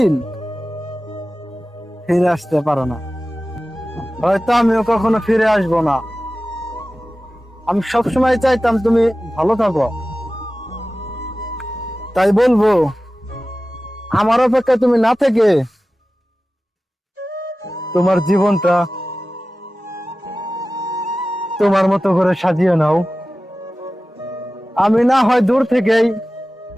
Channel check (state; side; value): normal; both; correlation 0.95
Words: ফিরে আসতে পারে না। হয়তো আমিও কখনো ফিরে আসবো না। আমি সবসময় চাইতাম তুমি ভালো থাকো, তাই বলবো আমার অপেক্ষা তুমি না থেকে তোমার জীবনটা তোমার মতো করে সাজিয়ে নাও। আমি না হয় দূর থেকেই